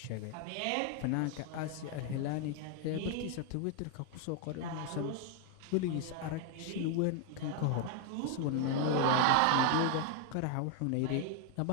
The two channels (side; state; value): both; different; correlation 0.00